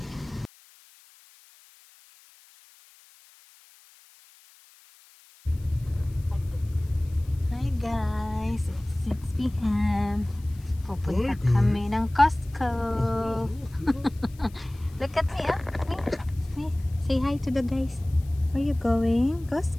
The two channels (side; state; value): left; noise; hiss, 26 dB below the sound